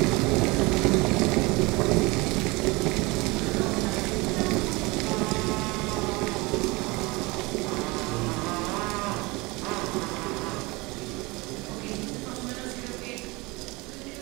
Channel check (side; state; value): left; quieter; 24.3 dB